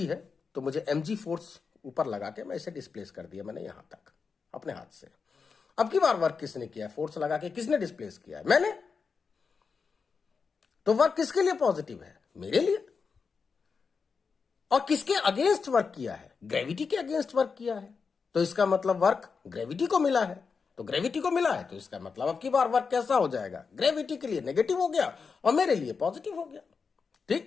है, तो मुझे mg फोर्स ऊपर लगा के मैं इसे डिस्प्लेस कर दिया मैंने यहां तक अपने हाथ से। अब की बार वर्क किसने किया? फोर्स लगा के किसने डिस्प्लेस किया है? मैंने। तो वर्क किसके लिए पॉजिटिव है? मेरे लिए। और किसके अगेंस्ट वर्क किया है? ग्रेविटी के अगेंस्ट वर्क किया है, तो इसका मतलब वर्क ग्रेविटी को मिला है। तो ग्रेविटी को मिला है, तो इसका मतलब अब की बार वर्क कैसा हो जाएगा? ग्रेविटी के लिए नेगेटिव हो गया और मेरे लिए पॉजिटिव हो गया।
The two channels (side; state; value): right; quieter; 5.3 dB